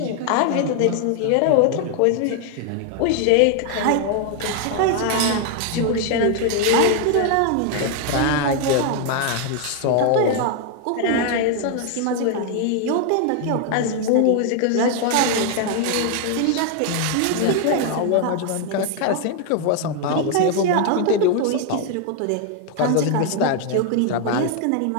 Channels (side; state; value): both; different; correlation 0.00